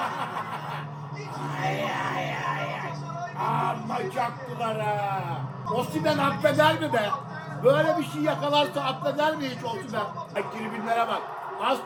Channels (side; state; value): both; identical; correlation 1.00